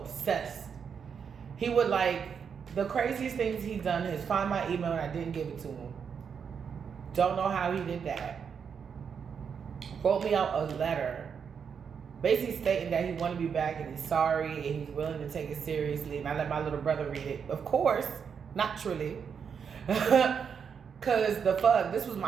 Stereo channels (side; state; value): left; quieter; 6.8 dB